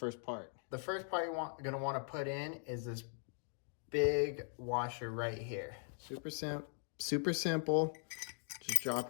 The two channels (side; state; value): right; silent; 51 dB below the other